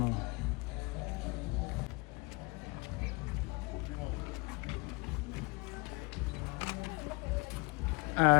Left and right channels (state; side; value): quieter; right; 27.8 dB